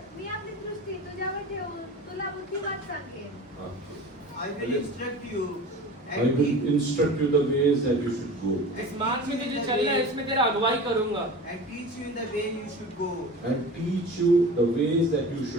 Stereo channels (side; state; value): both; normal; correlation 0.36